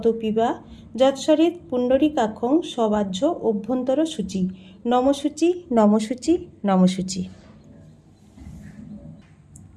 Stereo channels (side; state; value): both; identical; correlation 1.00